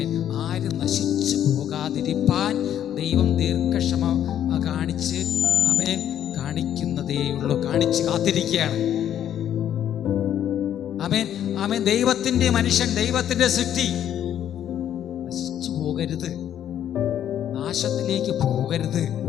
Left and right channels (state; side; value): quieter; right; 10.4 dB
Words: ആരും നശിച്ചു പോകാതിരിപ്പാൻ ദൈവം ദീർഘക്ഷമ കാണിച്ച് കാണിക്കുന്നതേയുള്ളൂ, കാണിച്ച് കാത്തിരിക്കുകയാണ്. ആമേൻ. ദൈവത്തിന്റെ മനുഷ്യൻ, ദൈവത്തിന്റെ സൃഷ്ടി നശിച്ചു പോകരുത്, നാശത്തിലേക്ക് പോകരുത്